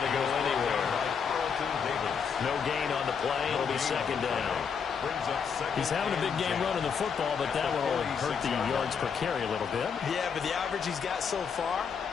to go anywhere. No gain on the play. It'll be second down. He's having a big game running the football, but that will hurt the yards per carry a little bit. Yeah, but the average he's got so far,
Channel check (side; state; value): right; quieter; 6.5 dB